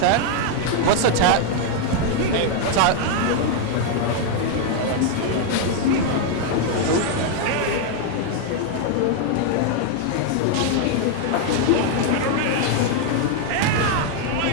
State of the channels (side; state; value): both; different; correlation 0.00